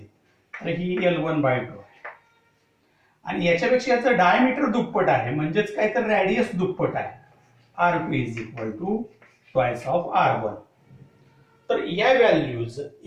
तर ही L1/2 आहे आणि याच्यापेक्षा याचं डायमीटर दुप्पट आहे म्हणजेच काय तर रॅडियस दुप्पट आहे, R2 is equal to twice of R1. तर या व्हॅल्यूज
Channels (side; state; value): both; identical; correlation 1.00